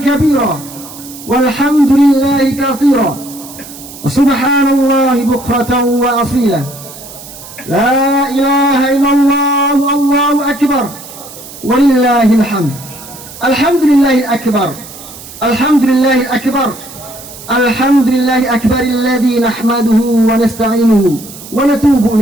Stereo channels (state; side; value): noise; right; hiss, 16 dB below the sound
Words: kabira walhamdulillahi katsira. Subhanallahi bukratan wa asila. La ilaha illallah, Allahu Akbar walillahil hamd. Alhamdulillahil akbar. Alhamdulillahil akbar. Alhamdulillahil akbar alladzi nahmaduhu wa nasta'inuhu wa natubu